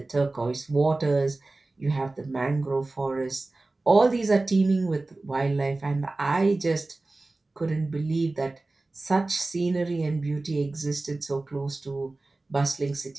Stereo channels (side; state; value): left; quieter; 3.1 dB